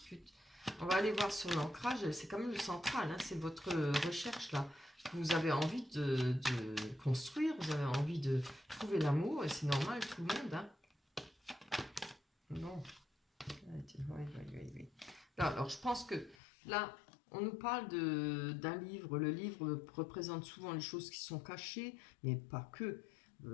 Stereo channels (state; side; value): drops out; right; at 16.4 s